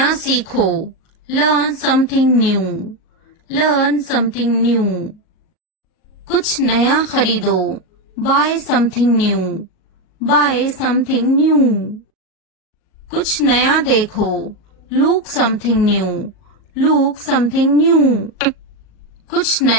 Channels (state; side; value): late; right; 38 ms